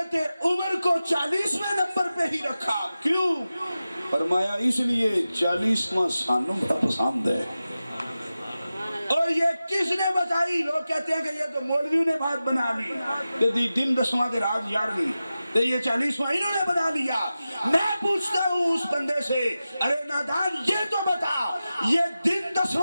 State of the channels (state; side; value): inverted; both; correlation -0.94